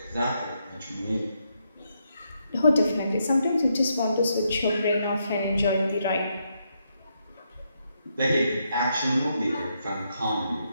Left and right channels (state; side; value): inverted; both; correlation -0.79